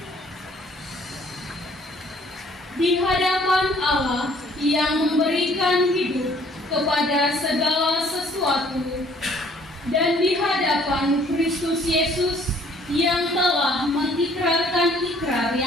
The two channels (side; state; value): both; normal; correlation 0.59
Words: Di hadapan Allah yang memberikan hidup kepada segala sesuatu, dan di hadapan Kristus Yesus yang telah mengikrarkan ikrar